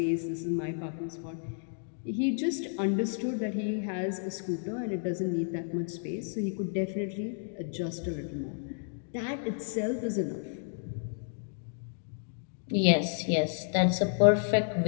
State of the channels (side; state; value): right; silent; digital silence